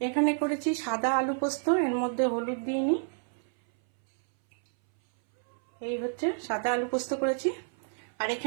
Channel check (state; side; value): silent; left; 58 dB below the other